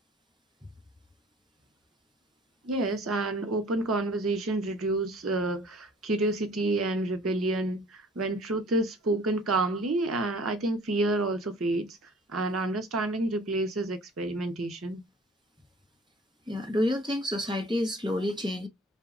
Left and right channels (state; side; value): normal; both; correlation 0.50